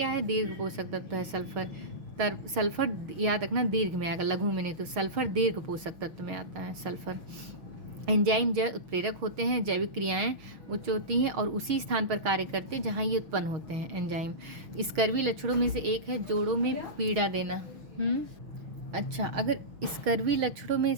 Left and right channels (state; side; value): late; left; 6.1 ms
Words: है? दीर्घ पोषक तत्व है सल्फर याद रखना, दीर्घ में आएगा, लघु में नहीं। तो सल्फर दीर्घ पोषक तत्व में आता है सल्फर। एंजाइम जैव उत्प्रेरक होते हैं, जैविक क्रियाएं उच्च होती हैं और उसी स्थान पर कार्य करते हैं जहां ये उत्पन्न होते हैं एंजाइम। स्कर्वी लक्षणों में से एक है जोड़ों में पीड़ा देना। अच्छा, अगर स्कर्वी लक्षणों में